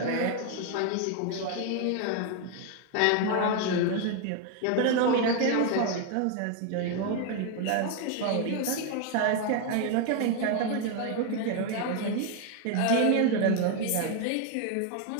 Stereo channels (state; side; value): different; both; correlation 0.01